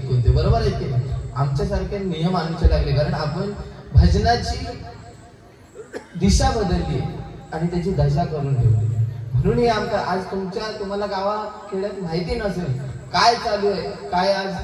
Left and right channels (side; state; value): both; identical; correlation 1.00